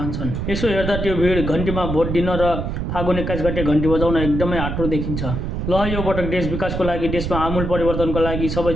यसो हेर्दा त्यो भिड घन्टीमा भोट दिन र फागुन 21 गते घन्टी बजाउन एकदमै आँटो देखिन्छ। ल यो पटक देश विकासको लागि, देशमा आमूल परिवर्तनको लागि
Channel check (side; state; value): right; noise; rumble, 3 dB below the sound